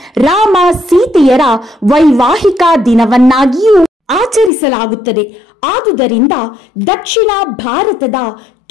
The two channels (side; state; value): right; drops out; at 4.5 s